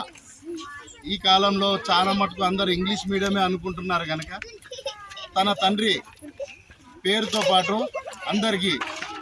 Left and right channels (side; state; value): both; identical; correlation 1.00